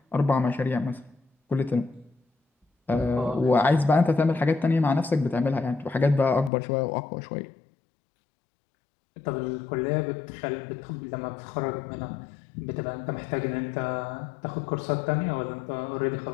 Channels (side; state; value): right; drops out; at 6.5 s